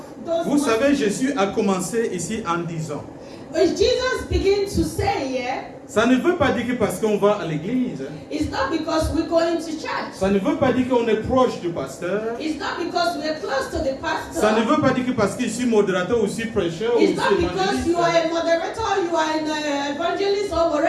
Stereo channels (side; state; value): both; identical; correlation 1.00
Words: those. Vous savez, Jésus a commencé ici en disant, Jesus began to say here, ça ne veut pas dire que parce qu'on va à l'église, it's not because we're going to church. ça ne veut pas dire qu'on est proche du pasteur, It's not because we're close to the pastor. ça ne veut pas dire que parce que je suis modérateur ou je suis prêcheur ou je It's not suis because you are évangéliste. a moderator, you are an evangelist or